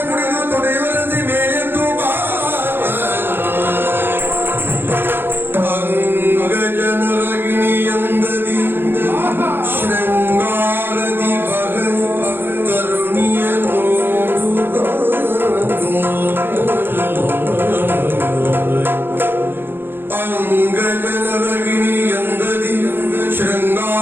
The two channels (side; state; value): left; late; 0.10 ms